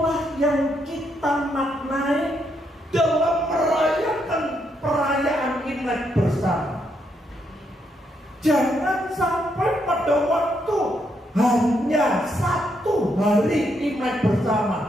yang kita maknai dalam merayakan perayaan Imlek bersama. Jangan sampai pada waktu hanya satu hari Imlek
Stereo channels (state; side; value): normal; both; correlation 0.77